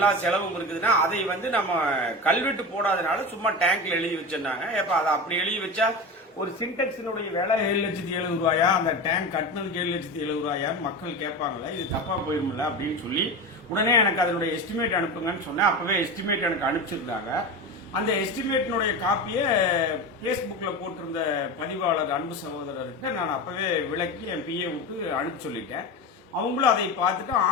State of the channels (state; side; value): normal; both; correlation 0.25